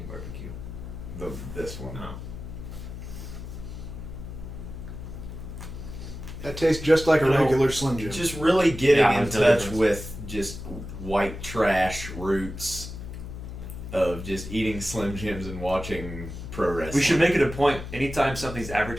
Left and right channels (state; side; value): noise; left; hum, 10 dB below the sound